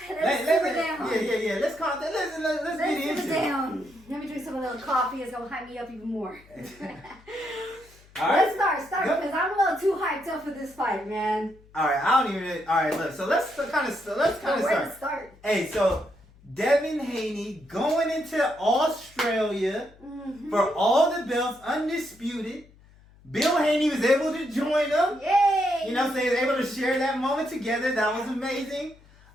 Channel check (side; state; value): left; noise; hum, 26 dB below the sound